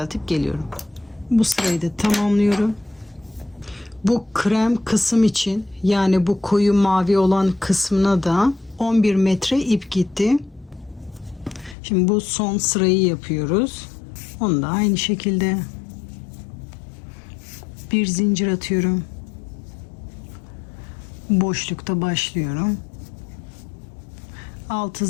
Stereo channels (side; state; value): right; drops out; at 11.8 s